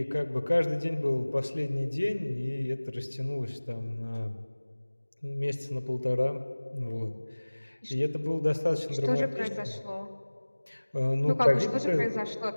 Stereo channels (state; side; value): inverted; both; correlation -1.00